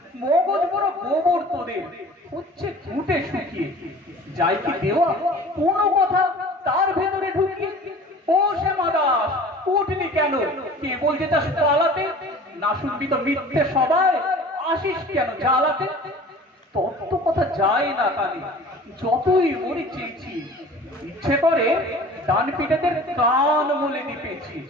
মগজ বড় গোবর তোদের, হচ্ছে ঘুটে শুকিয়ে। যাই কি দেওয়া কোনো কথা তার ভেতরে ঢুকিয়ে। ও শ্যামা দাস, উঠলি কেন? কেবল যেটা পালাতে, না শুনবি তো মিথ্যে সবাই, আসিস কেন জ্বালাতে? তত্ত্ব কথা যায় না কানে, যতই মরি চেয়েছি। ইচ্ছে করে ডান পিঠেদের কান মলে দিপেছি।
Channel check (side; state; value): both; normal; correlation 0.43